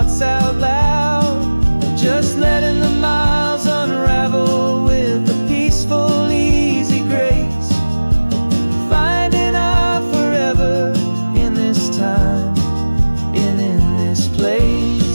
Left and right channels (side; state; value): both; inverted; correlation -1.00